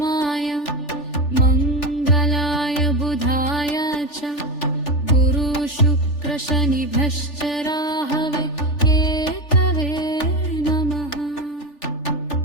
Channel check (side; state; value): right; late; 3.4 ms